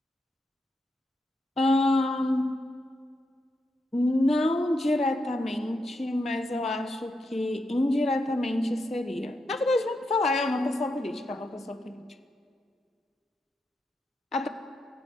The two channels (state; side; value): normal; both; correlation 0.84